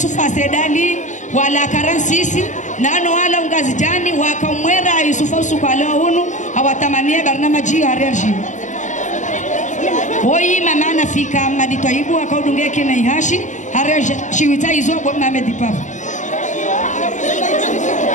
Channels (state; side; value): late; right; 0.36 ms